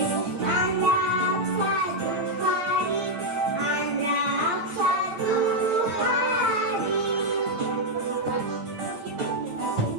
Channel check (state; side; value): late; left; 9.0 ms